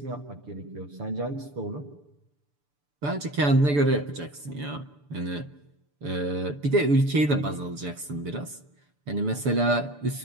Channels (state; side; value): late; left; 6.9 ms